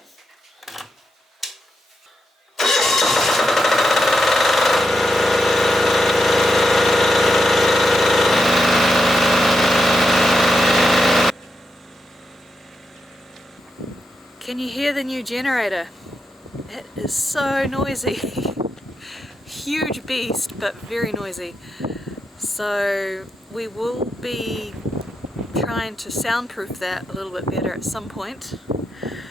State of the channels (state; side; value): normal; both; correlation 0.85